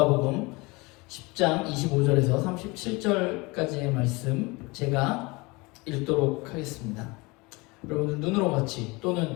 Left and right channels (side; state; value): right; quieter; 25.0 dB